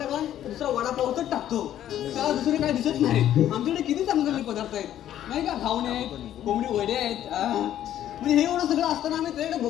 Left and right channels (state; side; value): quieter; right; 11.6 dB